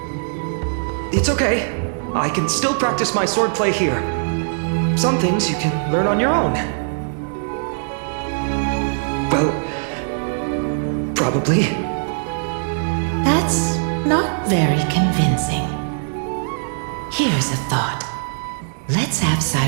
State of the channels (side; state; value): left; silent; digital silence